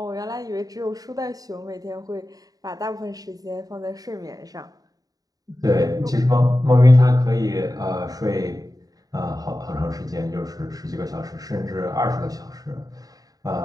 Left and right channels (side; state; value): left; late; 0.18 ms